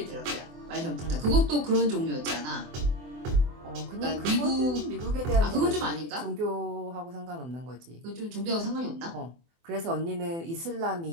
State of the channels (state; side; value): late; left; 24 ms